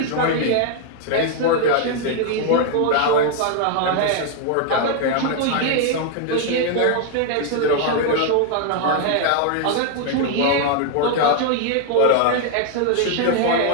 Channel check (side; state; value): both; different; correlation 0.00